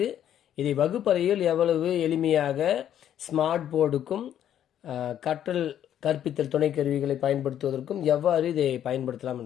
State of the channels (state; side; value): quieter; right; 10.5 dB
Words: இதை வகுப்பறையில் எவ்வளவு எளிமையாக ஸ்மார்ட் போர்டுக்கும் கற்பித்தல் துணை கருவிகளை பயன்படுத்துவதற்கும் எவ்வாறு இதை பயன்படுத்தலாம்